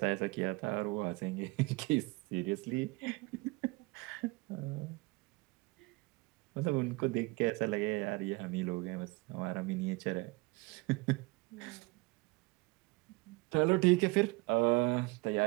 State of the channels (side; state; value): left; quieter; 25.1 dB